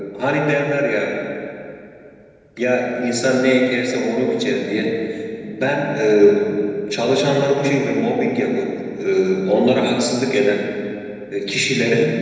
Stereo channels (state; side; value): identical; both; correlation 1.00